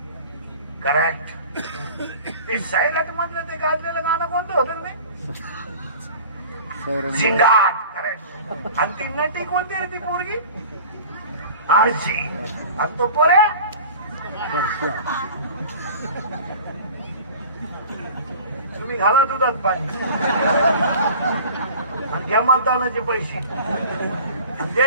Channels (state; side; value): inverted; both; correlation -0.41